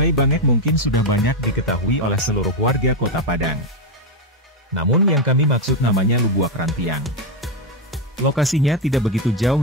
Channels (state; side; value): normal; both; correlation 0.05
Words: Bangek mungkin sudah banyak diketahui oleh seluruh warga Kota Padang. Namun yang kami maksud namanya Lubuak Rantiang. Lokasinya tidak begitu